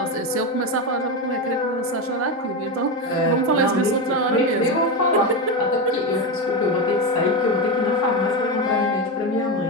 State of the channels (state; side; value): normal; both; correlation 0.14